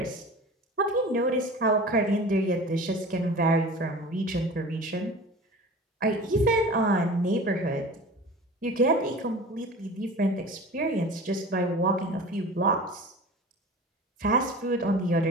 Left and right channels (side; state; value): both; normal; correlation 0.38